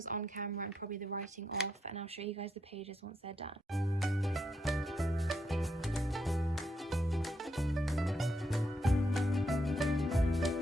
on camera and probably the writing off, and I'll show you guys the pages once they're done.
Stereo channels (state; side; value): normal; both; correlation 0.79